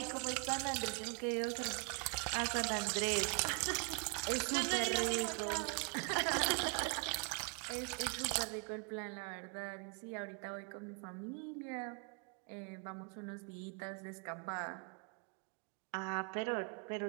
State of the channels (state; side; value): quieter; left; 35.8 dB